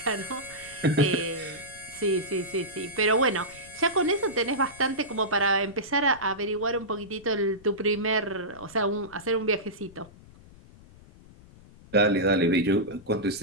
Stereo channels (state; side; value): noise; left; rumble, 23 dB below the sound